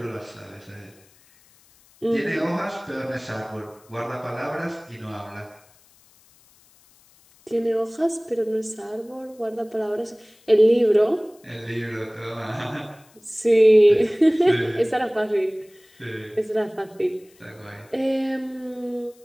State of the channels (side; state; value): left; noise; hiss, 30 dB below the sound